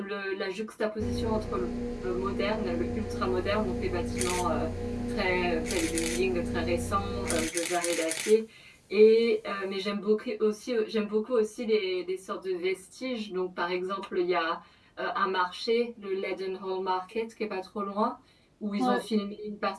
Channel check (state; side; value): identical; both; correlation 1.00